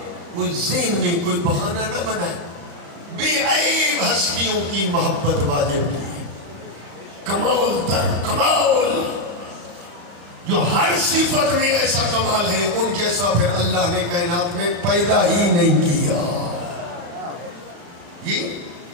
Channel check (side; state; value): left; late; 34 ms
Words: وہ ذہن میں کوئی بہانہ نہ بنائے. بے عیب ہستیوں کی محبت واجب کی ہے، کمال در کمال، جو ہر صفت میں ایسا کمال ہے ان جیسا پھر اللہ نے کائنات میں پیدا ہی نہیں کیا.